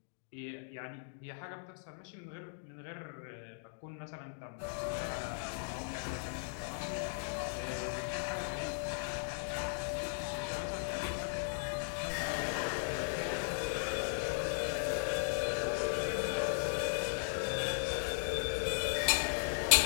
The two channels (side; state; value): right; silent; digital silence